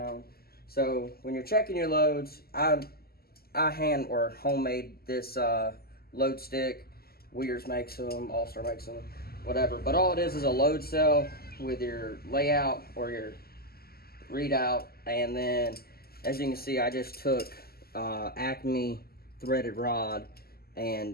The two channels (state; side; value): late; right; 0.45 ms